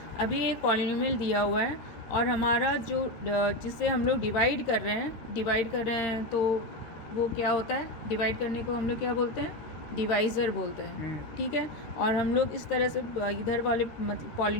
अभी एक पॉलिनोमियल दिया हुआ है और हमारा जो जिससे हम लोग डिवाइड कर रहे हैं तो वो क्या होता है? डिवाइड करने को हम लोग क्या बोलते हैं? डिवाइज़र बोलते हैं, ठीक है। और हम लोग इस तरह से इधर वाले मतलब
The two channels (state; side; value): late; right; 13 ms